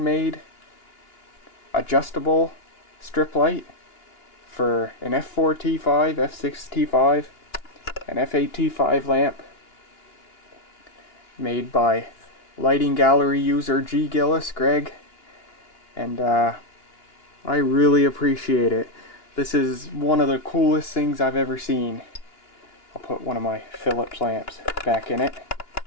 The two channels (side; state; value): right; late; 2.9 ms